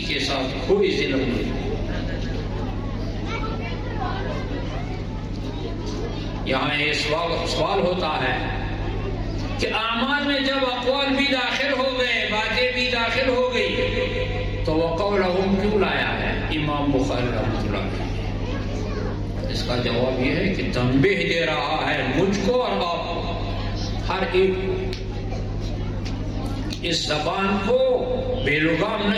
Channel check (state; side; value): identical; both; correlation 1.00